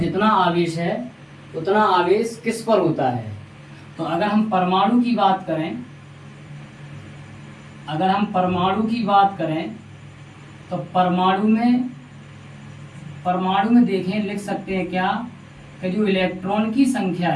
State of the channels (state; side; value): identical; both; correlation 1.00